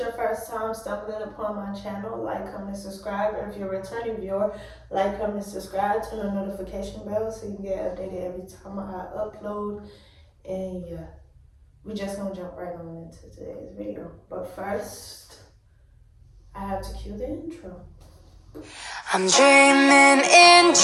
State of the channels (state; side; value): identical; both; correlation 1.00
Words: first time stumbling upon my channel, like, comment, subscribe. If you're a returning viewer, like, comment, subscribe, turn the notification bell so you can get updated every time I upload. And yeah, we just gonna jump right on into today's video. But first, I have to cue the intro. I'm dreaming in